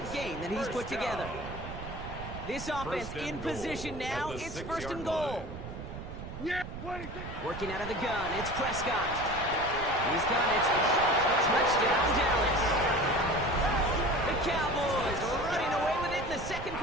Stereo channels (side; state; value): right; noise; rumble, 10 dB below the sound